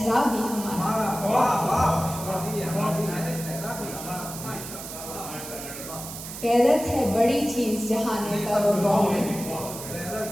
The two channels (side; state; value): right; noise; hiss, 10 dB below the sound